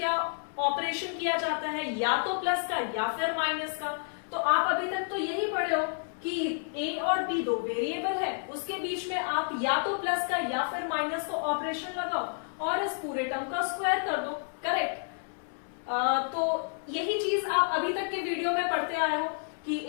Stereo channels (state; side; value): silent; right; 58 dB below the other